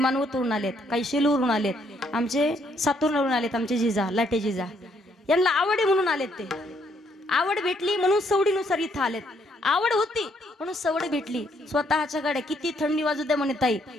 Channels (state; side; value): normal; both; correlation 0.70